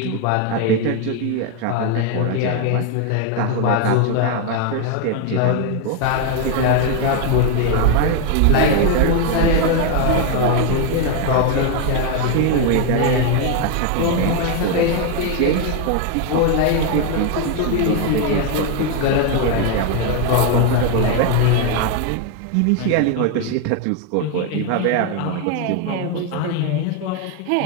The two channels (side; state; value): both; different; correlation 0.01